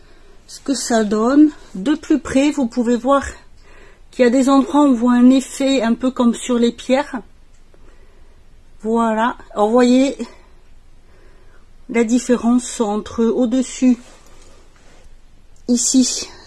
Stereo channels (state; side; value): identical; both; correlation 1.00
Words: ce que ça donne. De plus près, vous pouvez voir qu'il y a des endroits où on voit un effet un peu comme sur les pierres. Voilà, alors vous voyez la différence entre au-dessus, ici